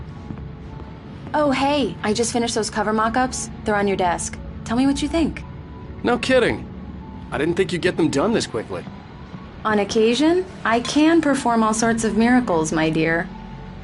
Oh, hey, I just finished those cover mock-ups. They're on your desk. Tell me what you think. No kidding. I didn't think you'd get them done this quickly. On occasion, I can perform all sorts of miracles, my dear.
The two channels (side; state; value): both; identical; correlation 1.00